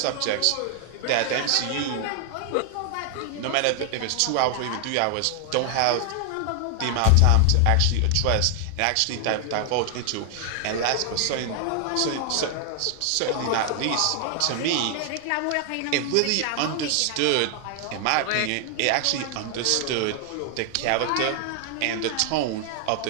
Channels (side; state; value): both; different; correlation 0.00